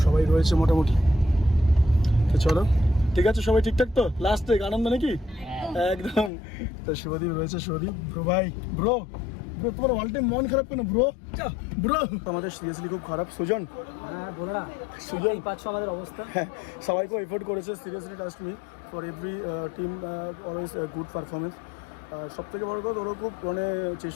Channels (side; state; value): right; drops out; at 6.3 s